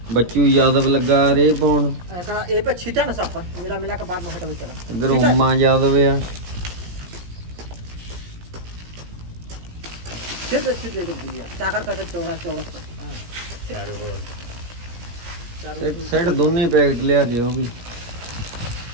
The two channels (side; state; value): left; late; 17 ms